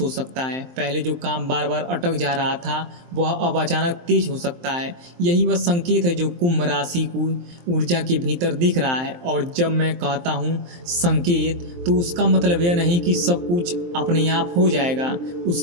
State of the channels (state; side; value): late; left; 23 ms